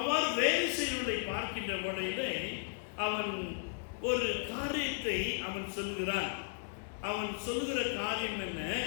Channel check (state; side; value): silent; right; digital silence